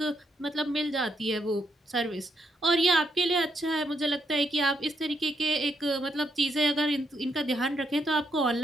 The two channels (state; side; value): normal; both; correlation 0.78